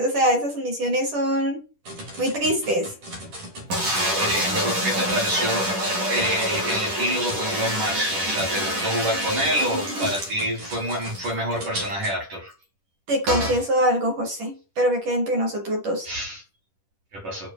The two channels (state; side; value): late; left; 10 ms